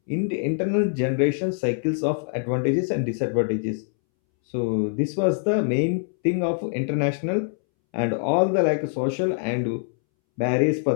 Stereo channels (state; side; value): silent; right; 63 dB below the other